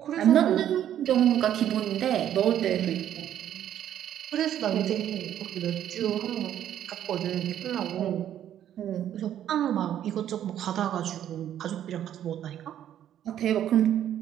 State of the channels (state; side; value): quieter; left; 10.8 dB